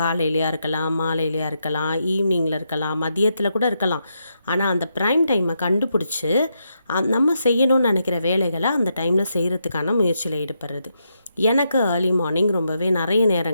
இருக்கலாம், மாலையிலையா இருக்கலாம், ஈவினிங்கில் இருக்கலாம், மதியத்தில் கூட இருக்கலாம். ஆனால் அந்த ப்ரைம் டைமை கண்டுபிடிச்சி நம்ம செய்யணும்னு நினைக்கிற வேலைகளை அந்த டைமில் செய்கிறதுக்கான முயற்சியில் ஈடுபடுறது. எனக்கு ஏர்லி மார்னிங் ரொம்பவே நிறைய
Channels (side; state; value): both; inverted; correlation -0.82